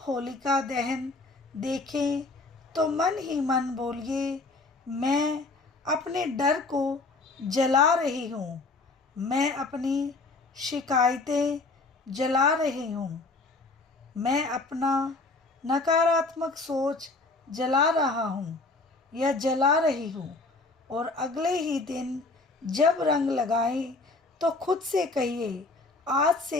होलिका दहन देखें तो मन ही मन बोलिए, मैं अपने डर को जला रही हूँ, मैं अपनी शिकायतें जला रही हूँ, मैं अपना नकारात्मक सोच जला रहा हूँ या जला रही हूँ। और अगले ही दिन जब रंग लगाएं तो खुद से कहिए, आज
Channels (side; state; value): right; quieter; 3.4 dB